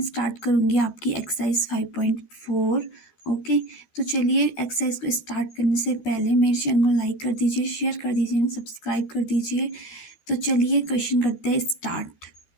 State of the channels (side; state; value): right; late; 12 ms